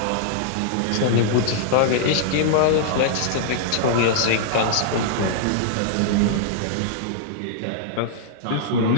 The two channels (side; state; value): both; different; correlation -0.01